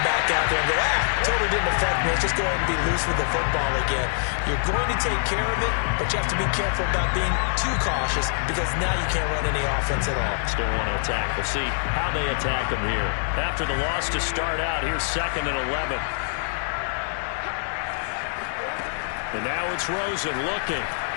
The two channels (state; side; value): silent; right; 62 dB below the other